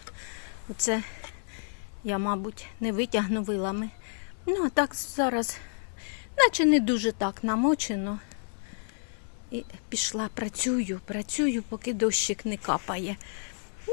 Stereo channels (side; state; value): right; silent; 58 dB below the other